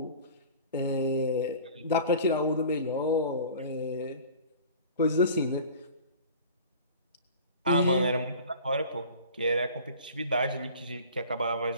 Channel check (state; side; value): inverted; both; correlation -0.42